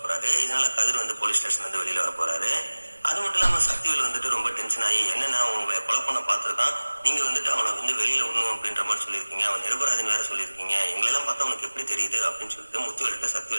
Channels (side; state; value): both; inverted; correlation -1.00